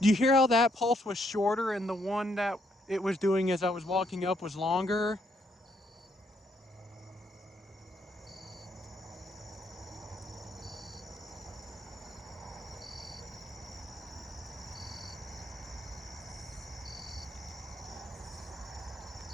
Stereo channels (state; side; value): normal; both; correlation 0.73